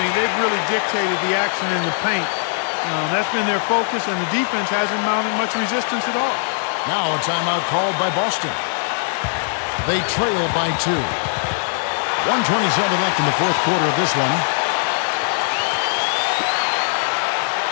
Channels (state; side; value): silent; right; digital silence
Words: they've really dictated the action in the paint. That's been their focus, and the defense hasn't mounted much resistance at all. Now a timeout called by Boston. They trail by 2. 1:27 left in the fourth quarter of this one.